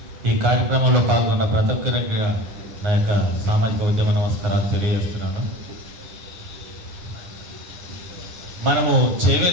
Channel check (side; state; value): left; late; 9.6 ms